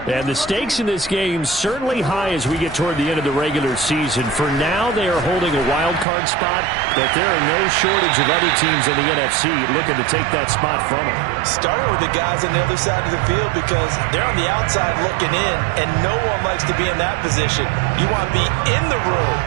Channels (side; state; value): left; drops out; at 6.1 s